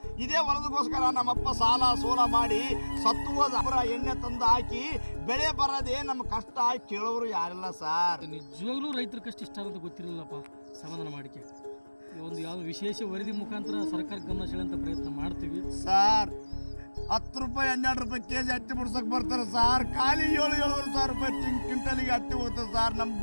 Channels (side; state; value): both; inverted; correlation -1.00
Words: ಇದೇ ಹೊಲದಗೋಸ್ಕರ ನಮ್ಮಪ್ಪ ಸಾಲ ಸೋಲ ಮಾಡಿ ಸತ್ತು ಹೋದ ಎಣ್ಣೆ ತಂದು ಹಾಕಿ ಬೆಳೆ ಬರದೆ ನಮ್ಮ ಕಷ್ಟ ಕೇಳೋರು ಯಾರಿಲ್ಲ ಸಾರ್. ನಿಜವಾಗ್ಲೂ ರೈತರ ಕಷ್ಟ ಇಷ್ಟ ಅಂತ ಗೊತ್ತಿರಲಿಲ್ಲಪ್ಪ. ಸಮಾಧಾನ ಮಾಡಿಕೆ ಒಂದು ಯಾವ ವಿಶೇಷ ವರದಿ ಮುಖಾಂತರ ಸರ್ಕಾರ ಗಮನ ಸೆಳೆಯುವಂತ ಪ್ರಯತ್ನ ಮಾಡ್ತೀವಿ ಸಾರ್. 10 ರೂಪಾಯಿ 12 ರೂಪಾಯಿ ಕೆಜಿ ಹತ್ತಿ ಬಿಡ್ಸಕ್ ಬರ್ತಾರೆ ಸಾರ್. ಖಾಲಿ 7,000 ರೂಪಾಯಿ ಕ್ವಿಂಟಲಿಗೆ ಹತ್ತಿ ಹೋಗ್ತದೆ ಸಾರ್. ನಮ್